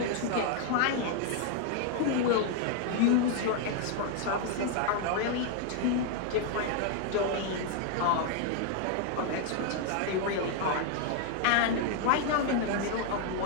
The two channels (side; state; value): both; different; correlation 0.00